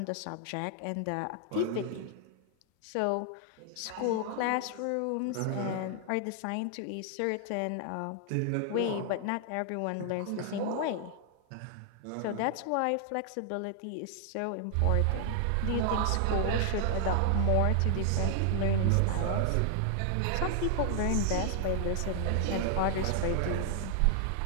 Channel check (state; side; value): different; both; correlation 0.00